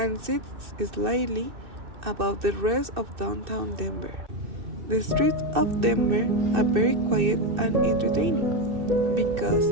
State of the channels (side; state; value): left; late; 2.6 ms